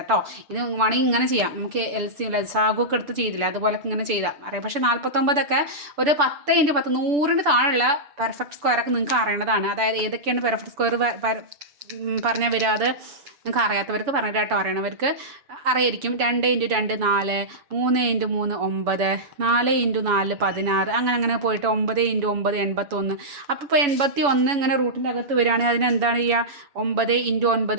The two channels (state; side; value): late; left; 6.9 ms